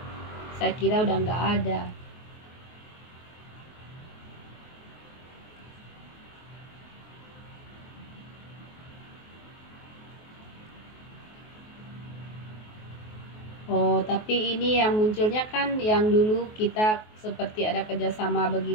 Saya kira udah nggak ada. Oh, tapi ini yang munculnya kan yang dulu kita seperti ada kerjasama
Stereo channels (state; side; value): late; right; 23 ms